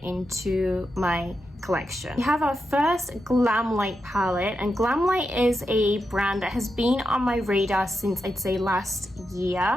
into my collection. We have our first Glamlight palette, and Glamlight is a brand that has been on my radar since, I'd say, last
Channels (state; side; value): normal; both; correlation 0.87